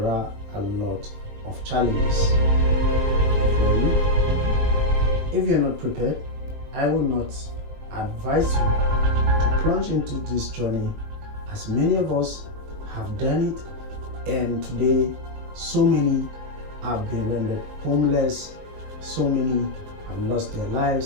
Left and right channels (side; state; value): left; late; 20 ms